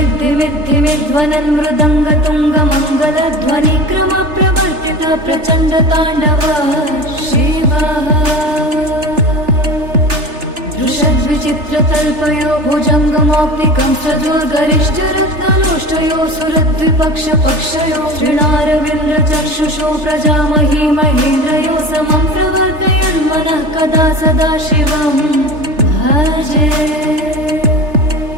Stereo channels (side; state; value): left; late; 3.3 ms